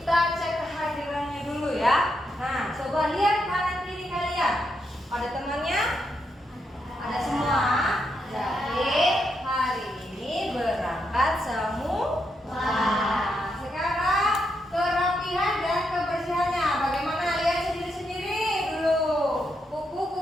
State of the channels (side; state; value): both; normal; correlation 0.81